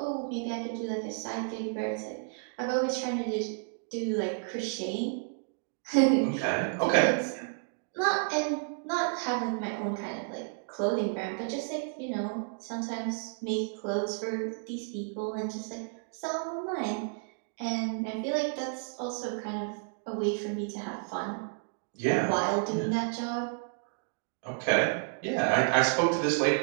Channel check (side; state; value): left; silent; 57 dB below the other